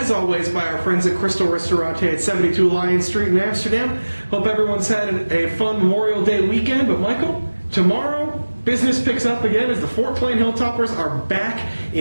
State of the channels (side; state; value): both; inverted; correlation -1.00